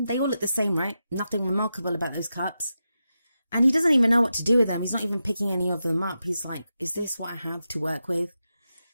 They all look the same, right? Nothing remarkable about those cups. And he doesn't even know what to do with them. He's not even picking any of them up. He's like, is this what I have to work with?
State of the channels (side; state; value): both; inverted; correlation -0.89